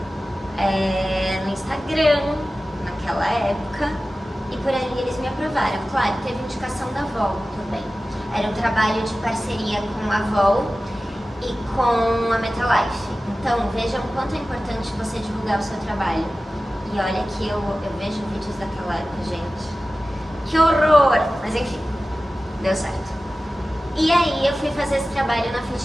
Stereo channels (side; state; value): both; normal; correlation 0.95